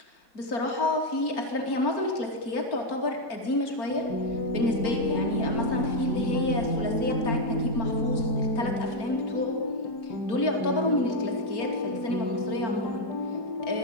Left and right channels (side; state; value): right; late; 4.4 ms